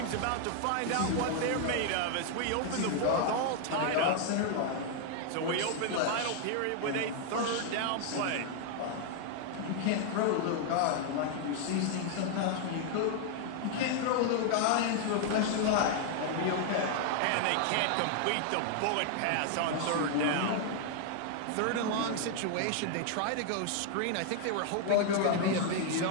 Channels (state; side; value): different; both; correlation 0.00